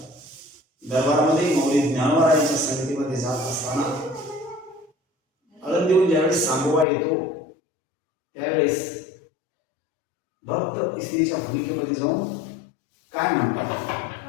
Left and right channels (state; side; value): drops out; right; at 6.9 s